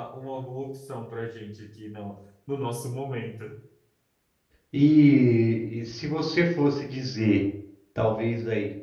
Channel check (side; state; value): both; identical; correlation 1.00